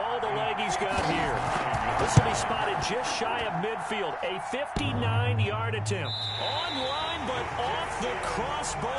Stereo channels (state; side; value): identical; both; correlation 1.00